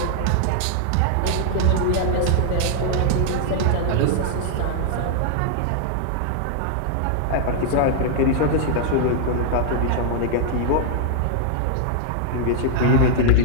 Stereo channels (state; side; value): different; both; correlation -0.01